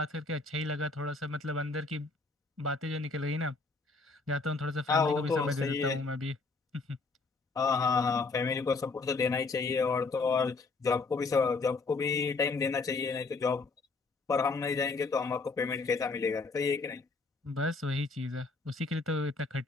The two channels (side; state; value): right; quieter; 3.9 dB